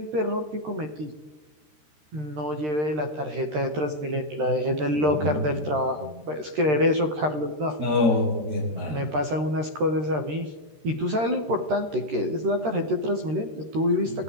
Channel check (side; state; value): left; late; 13 ms